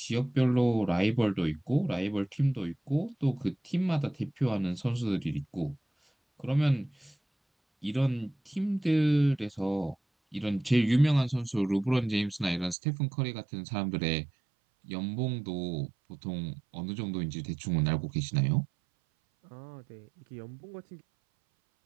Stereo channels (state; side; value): drops out; left; at 12.8 s